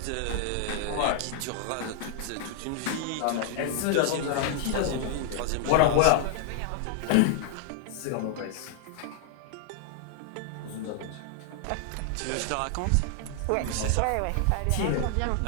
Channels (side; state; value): both; different; correlation 0.00